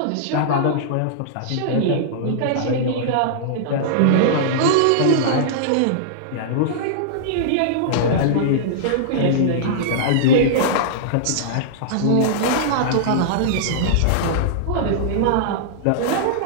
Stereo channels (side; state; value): both; different; correlation -0.02